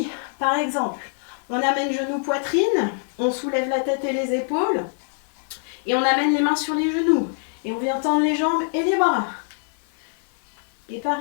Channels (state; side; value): silent; right; 63 dB below the other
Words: par exemple, on amène genou poitrine, on soulève la tête et les épaules, et on amène les mains sur les genoux. Et on vient tendre les jambes et les bras. Et